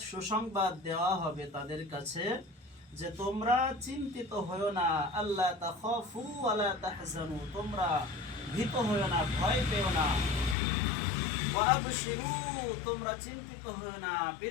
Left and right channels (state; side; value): drops out; right; at 10.6 s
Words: সুসংবাদ দেওয়া হবে তাদের কাছে যে তোমরা চিন্তিত হয়ো না, আল্লাহ তাখাফু ওয়ালা তাহজানু, তোমরা ভীত হয়ো না, ভয় পেও না, ওয়া আবশিরু, তোমরা চিন্তিত হয়ো না,